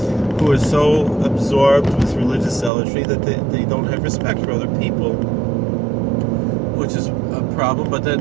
are so absorbed with religious zealotry that they don't have respect for other people, which is a problem. But then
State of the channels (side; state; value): left; drops out; at 2.7 s